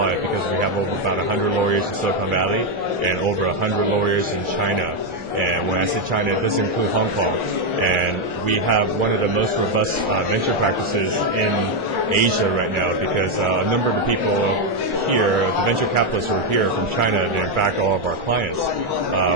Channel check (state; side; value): late; left; 1.4 ms